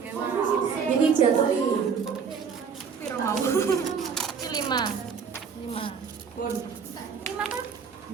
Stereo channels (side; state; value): left; quieter; 6.4 dB